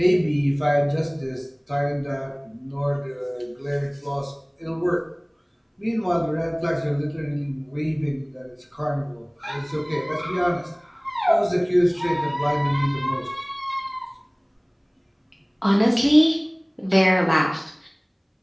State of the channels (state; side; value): identical; both; correlation 1.00